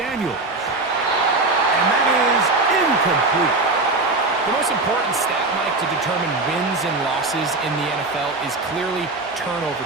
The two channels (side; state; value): left; quieter; 3.3 dB